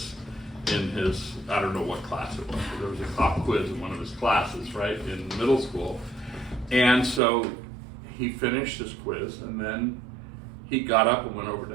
in his, I don't know what class it was, but there was a pop quiz in one of his classes, right, in middle school. And so he finished his quiz, and then he got up and went over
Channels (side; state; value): left; drops out; at 7.2 s